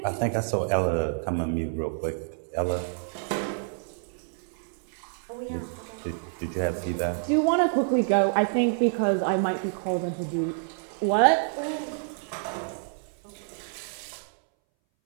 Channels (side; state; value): left; silent; 60 dB below the other